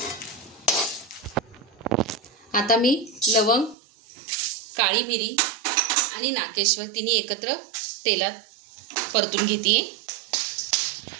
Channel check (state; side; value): drops out; left; at 3.8 s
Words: आता मी लवंग, काळी मिरी आणि नाकेश्वर तिन्ही एकत्र तेलात परतून घेते.